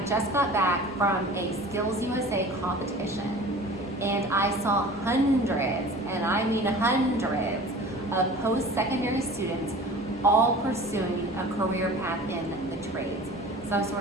just got back from a Skills USA competition and I saw hundreds, and I mean hundreds, of post-secondary students all pursuing a career path in the trades, some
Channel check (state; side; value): normal; both; correlation 0.41